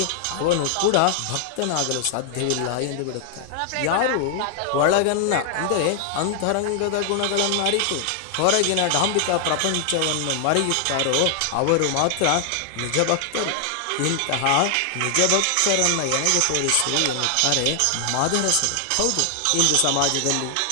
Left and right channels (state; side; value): different; both; correlation 0.00